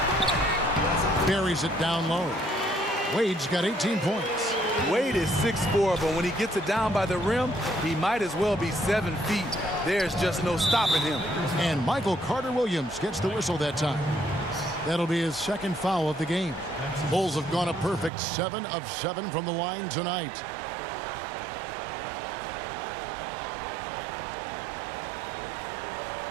Buries it down low. Wade's got 18 points. Wade is 6'4", but when he gets it down by the rim, he might as well be 7 feet. There's just no stopping him. And Michael Carter-Williams gets the whistle that time. That'll be his second foul of the game. Bulls have gone a perfect 7 of 7 from the line tonight.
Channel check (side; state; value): left; drops out; at 18.1 s